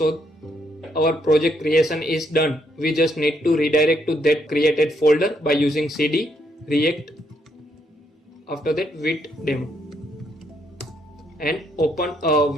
our project creation is done. We just need to redirect to that created folder by using cd react after that Vite demo. And open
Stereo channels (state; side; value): normal; both; correlation 0.74